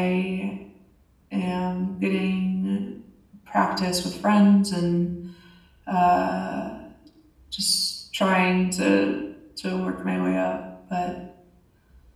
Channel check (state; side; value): identical; both; correlation 1.00